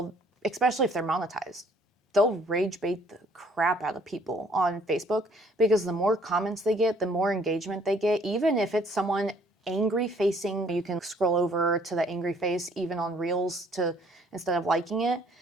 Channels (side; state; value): both; normal; correlation 0.61